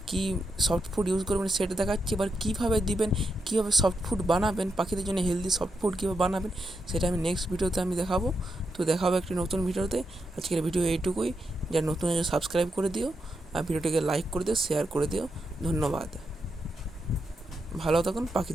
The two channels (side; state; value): both; normal; correlation 0.84